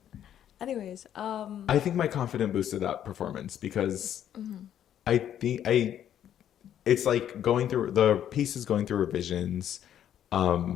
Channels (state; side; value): quieter; right; 10.3 dB